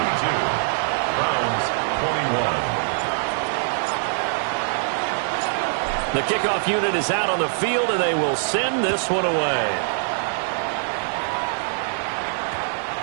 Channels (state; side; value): silent; left; 63 dB below the other